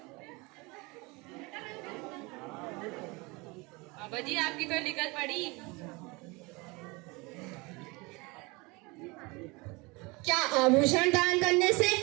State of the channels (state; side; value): quieter; left; 26.0 dB